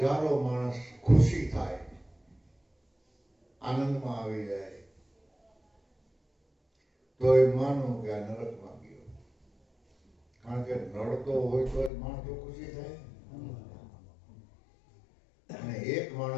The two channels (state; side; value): drops out; right; at 11.9 s